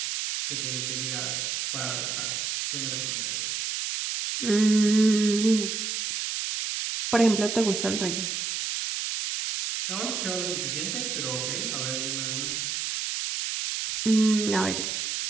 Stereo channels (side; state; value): right; noise; hiss, 2 dB below the sound